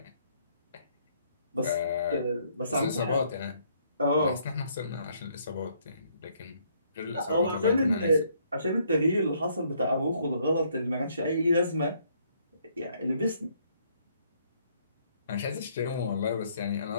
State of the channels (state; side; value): inverted; both; correlation -0.67